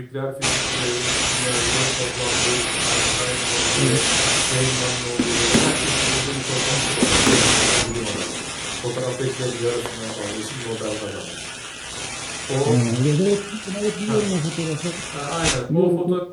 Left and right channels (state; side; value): identical; both; correlation 1.00